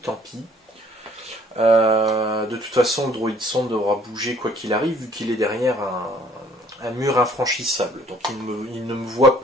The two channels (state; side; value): normal; both; correlation 0.58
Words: tant pis. De toute façon, le droïde sonde devra bouger quoi qu'il arrive, vu qu'il est derrière un mur infranchissable. Donc il ne me voit